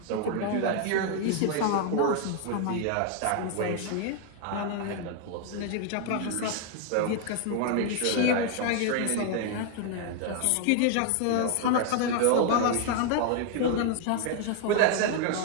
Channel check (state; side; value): different; both; correlation 0.00